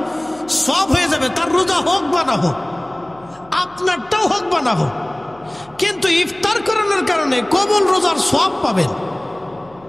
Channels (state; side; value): noise; left; hum, 27 dB below the sound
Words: সওয়াব হয়ে যাবে। তার রোজা হোক বা না হোক, আপনারটাও হোক বা না হোক, কিন্তু ইফতার করানোর কারণে কবুল রোজার সওয়াব পাবেন।